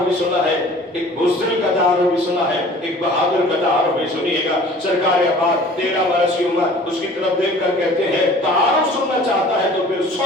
भी सुना है, एक बुज़दिल का तारुफ भी सुना है, एक बहादुर का तारुफ भी सुनिएगा। सरकार अब्बास 13 बरस की उम्र, उसकी तरफ देख कर कहते हैं तारुफ सुनना चाहता है तो फिर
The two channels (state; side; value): normal; both; correlation 0.47